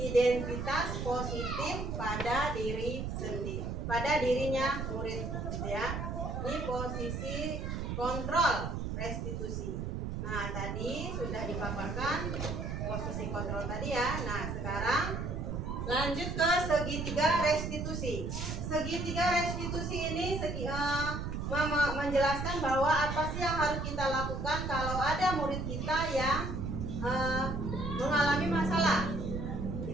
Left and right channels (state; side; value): noise; right; rumble, 3 dB below the sound